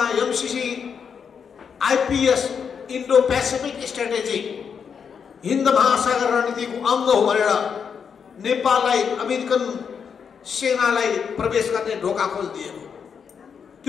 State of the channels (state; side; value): quieter; right; 6.7 dB